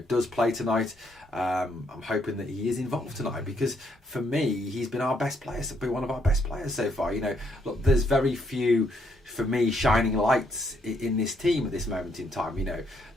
does play tonight. I'm hoping that he is involved tonight, because for me, he's been our best player. Been one of our best players so far. Look, there's very few, for me, shining lights in this team at this moment in time.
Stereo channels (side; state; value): both; normal; correlation 0.72